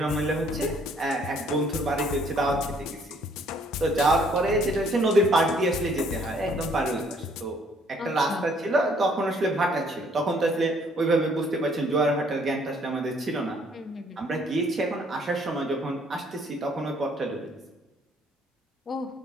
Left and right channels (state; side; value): normal; both; correlation 0.63